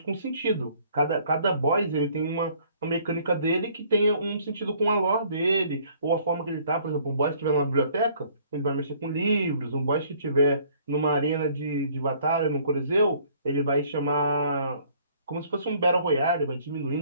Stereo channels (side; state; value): both; inverted; correlation -0.58